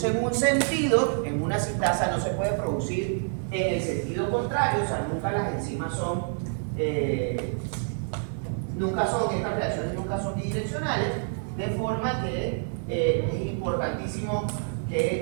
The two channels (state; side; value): silent; left; digital silence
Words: en un sentido, en una sintasa, no se puede producir en el sentido contrario. O sea, nunca las enzimas estas reacciones nunca son bidireccionales, de forma que es importantísimo